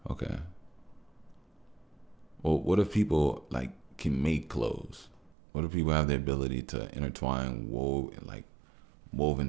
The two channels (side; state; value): left; drops out; at 5.4 s